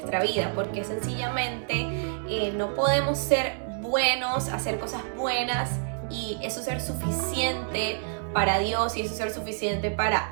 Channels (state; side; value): silent; left; digital silence